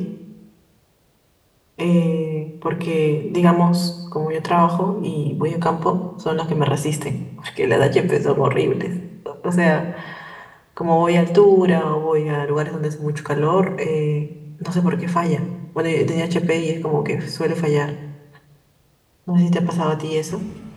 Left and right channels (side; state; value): both; identical; correlation 1.00